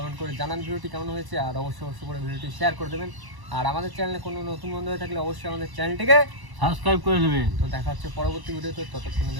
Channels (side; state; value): left; late; 1.0 ms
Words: করে জানান ভিডিওটি কেমন হয়েছে, আর অবশ্যই করে ভিডিওটি শেয়ার করে দেবেন। আর আমাদের চ্যানেলে কোনো নতুন বন্ধু হয়ে থাকলে অবশ্যই আমাদের চ্যানেলটিকে সাবস্ক্রাইব করে দেবেন। তো দেখা হচ্ছে পরবর্তী ভিডিওতে। ততক্ষণের